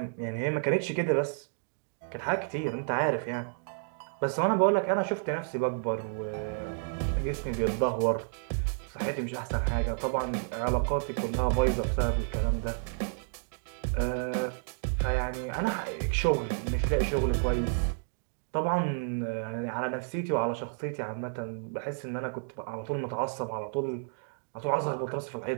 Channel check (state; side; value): silent; left; digital silence